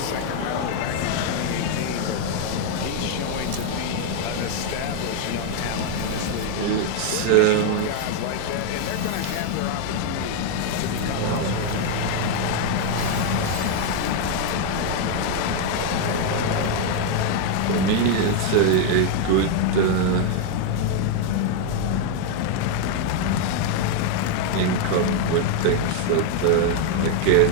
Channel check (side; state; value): both; different; correlation 0.01